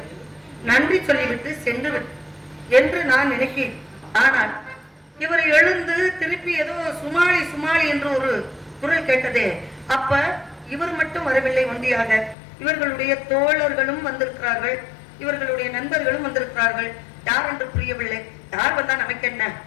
நன்றி சொல்லிவிட்டு சென்று என்று நான் நினைக்கிறேன். ஆனால் இவர் எழுந்து திருப்பி ஏதோ சுமாளி சுமாளி என்று ஒரு குரல் கேட்டதே. அப்ப இவர் மட்டும் வரவில்லை ஒன்றியாக, இவர்களுடைய தோழர்களும் வந்திருக்கிறார்கள், இவர்களுடைய நண்பர்களும் வந்திருக்கிறார்கள். யார் என்று புரியவில்லை. யார் வந்தா நமக்கு என்ன?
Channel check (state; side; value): drops out; right; at 12.4 s